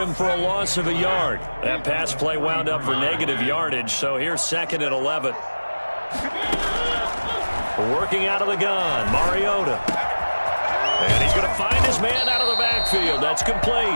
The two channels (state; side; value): inverted; both; correlation -1.00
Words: for a loss of a yard. That pass play wound up for negative yardage, so here's 2nd and 11. Working out of the gun, Mariota. And he's going to find his man out of the backfield. That's